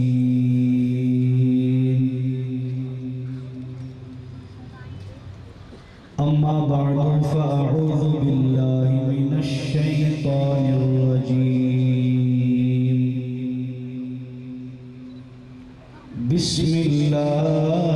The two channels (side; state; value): both; identical; correlation 1.00